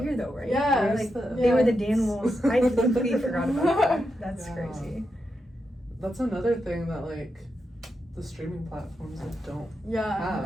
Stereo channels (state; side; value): normal; both; correlation 0.86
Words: year though, right? Yeah. Like, Yes. they were the Danimals. I completely forgot about that. That's Yeah. crazy. That's another thing that like the streaming platforms like don't. Yeah,